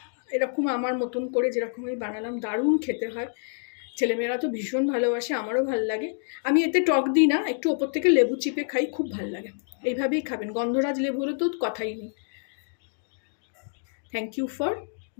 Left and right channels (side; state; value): right; silent; digital silence